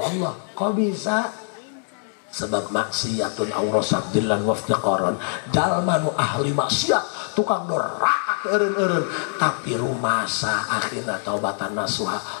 Allah kok bisa sebab maksiatun aurasat dillan waftiqaron jalma nu ahli maksiat tukang doraka eureun-eureun, tapi rumasa akhirna taubatan nasuha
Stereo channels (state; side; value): silent; right; 63 dB below the other